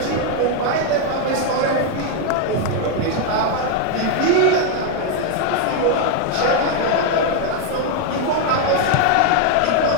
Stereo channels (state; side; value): different; both; correlation 0.01